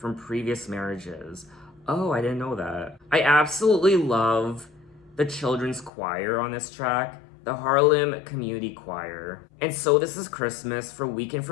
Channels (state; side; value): drops out; right; at 5.9 s